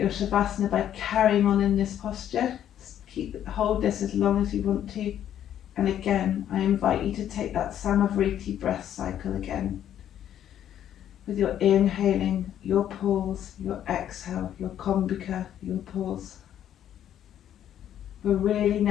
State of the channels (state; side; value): quieter; right; 10.6 dB